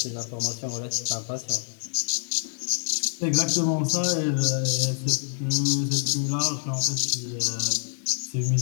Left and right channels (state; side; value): silent; right; 61 dB below the other